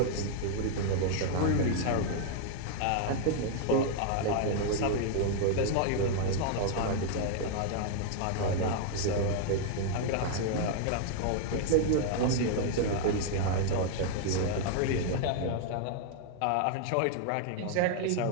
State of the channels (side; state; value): both; different; correlation 0.00